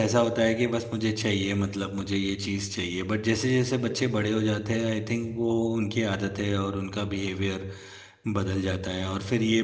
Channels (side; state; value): both; identical; correlation 1.00